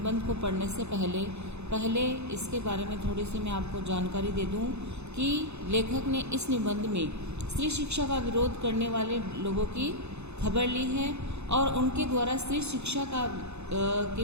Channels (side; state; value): left; late; 0.81 ms